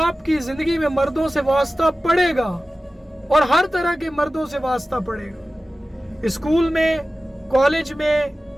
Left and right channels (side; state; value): both; normal; correlation 0.95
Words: کی زندگی میں مردوں سے واسطہ پڑے گا اور ہر طرح کے مردوں سے واسطہ پڑے گا، اسکول میں، کالج میں،